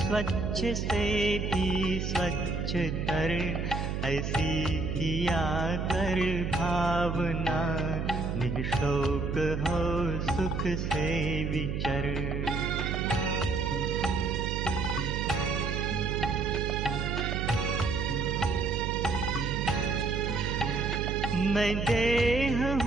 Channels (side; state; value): right; noise; hum, 2 dB below the sound